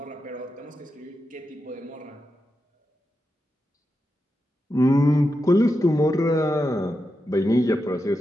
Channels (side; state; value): both; normal; correlation 0.88